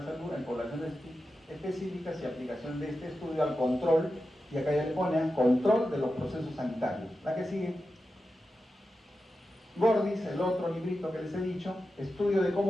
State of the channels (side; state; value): both; normal; correlation 0.91